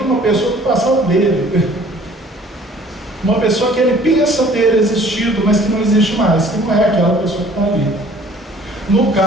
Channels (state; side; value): normal; both; correlation 0.53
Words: uma pessoa do passado dele. Uma pessoa que ele pensa ter existido, mas que não existe mais, que não é aquela pessoa que está ali. No